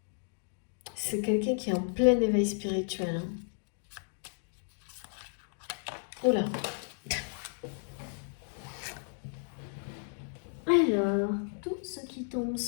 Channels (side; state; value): right; silent; digital silence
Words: C'est quelqu'un qui est en plein éveil spirituel, hein. Oula. Alors, tout ce qui tombe